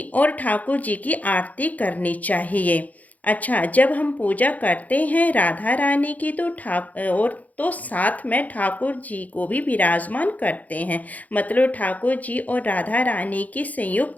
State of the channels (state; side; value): late; right; 0.077 ms